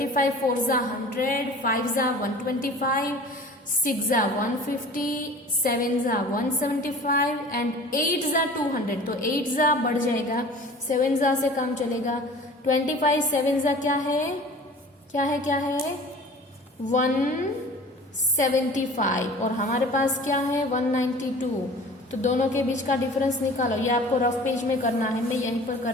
4 जा 100, 5 जा 125, 6 जा 150, 7 जा 175 एंड 8 जा 200. तो 8 जा बढ़ जाएगा, 7 जा से काम चलेगा. 25 7 जा क्या है 175 और हमारे पास क्या है 192. तो दोनों के बीच का डिफरेंस निकालो. ये आपको रफ पेज में करना है, मैं यहीं पर कर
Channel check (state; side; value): normal; both; correlation 0.43